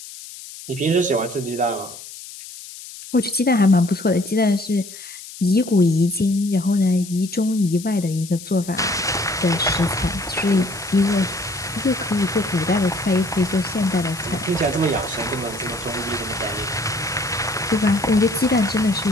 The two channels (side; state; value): left; noise; hiss, 14 dB below the sound